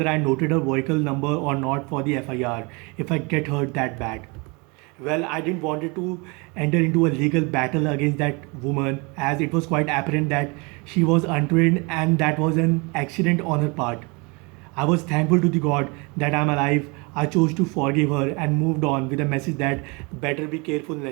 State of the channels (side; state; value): left; quieter; 29.2 dB